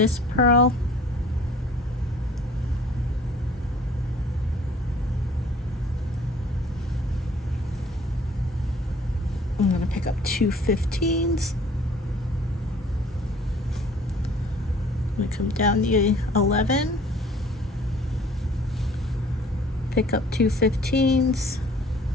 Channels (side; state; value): both; normal; correlation 0.53